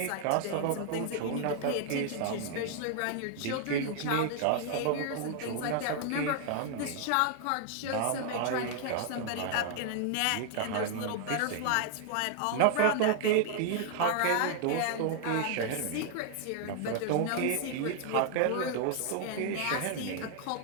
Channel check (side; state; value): both; different; correlation 0.00